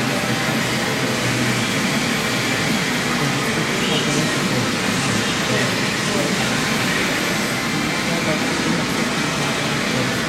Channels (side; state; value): both; identical; correlation 1.00